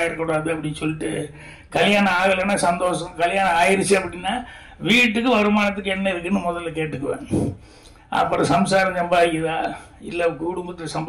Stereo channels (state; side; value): identical; both; correlation 1.00